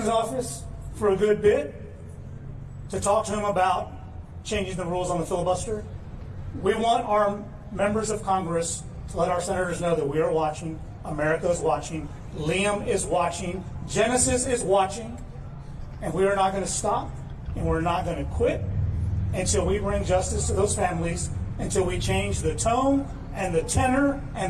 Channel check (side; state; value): both; identical; correlation 1.00